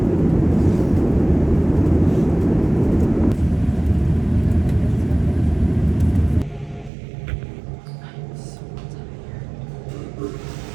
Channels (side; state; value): left; drops out; at 6.9 s